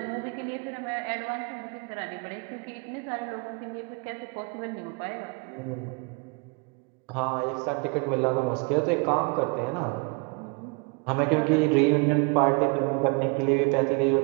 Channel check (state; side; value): quieter; left; 32.1 dB